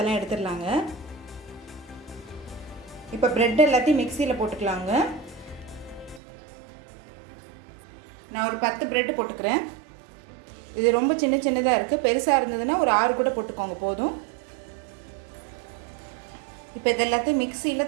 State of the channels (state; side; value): drops out; left; at 6.2 s